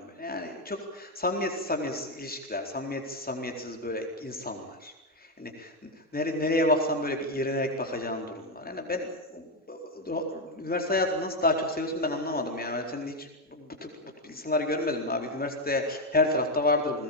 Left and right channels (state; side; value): normal; both; correlation 0.06